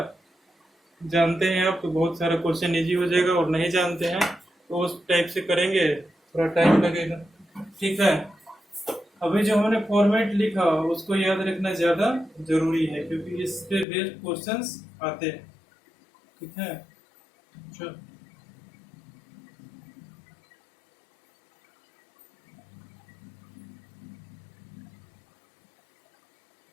जानते हैं आप तो बहुत सारा क्वेश्चन इजी हो जाएगा, और नहीं जानते हैं तो उस टाइप से करेंगे, थोड़ा टाइम लगेगा, ठीक है। अभी जो हमने फॉर्मेट लिखा उसको याद रखना ज्यादा जरूरी है, क्योंकि इस पे बेस्ड क्वेश्चंस आते हैं, ठीक है। चलो,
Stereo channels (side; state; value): right; drops out; at 13.9 s